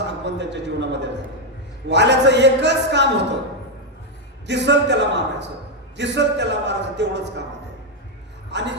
आगमन त्यांच्या जीवनामध्ये झालं. वाल्याचं एकच काम होतं, दिसल त्याला मारायचं, तेवढंच काम होतं.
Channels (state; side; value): normal; both; correlation 0.03